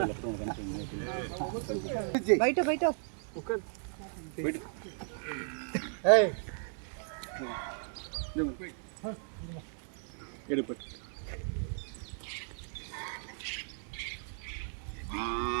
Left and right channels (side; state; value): left; silent; 54 dB below the other